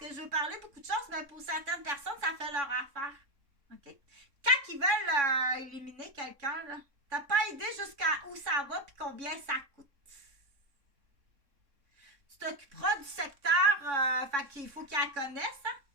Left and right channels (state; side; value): late; left; 3.6 ms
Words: je veux parler beaucoup de choses, mais pour certaines personnes, ça fait leur affaire. OK? Quand ils veulent éliminer quelqu'un, là, t'as pas idée jusqu'à où ça va puis combien ça coûte. Tu t'occuperas du secteur, fait qu'il faut qu'elle connaisse, hein?